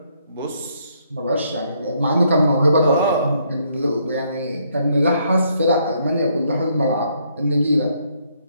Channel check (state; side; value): inverted; both; correlation -0.71